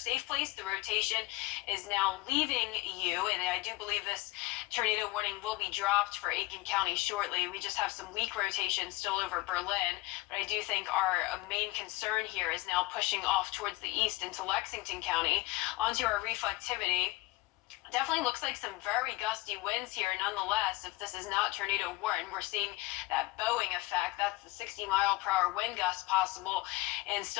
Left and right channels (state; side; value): quieter; right; 19.9 dB